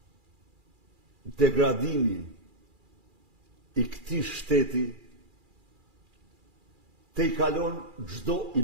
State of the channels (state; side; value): late; left; 2.4 ms